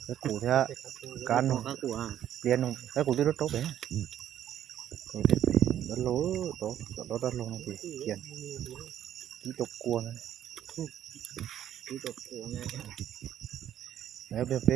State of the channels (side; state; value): left; quieter; 10.9 dB